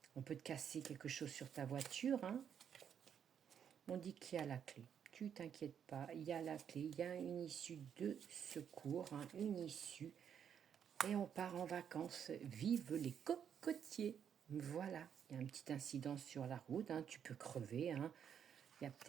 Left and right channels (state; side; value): quieter; left; 8.3 dB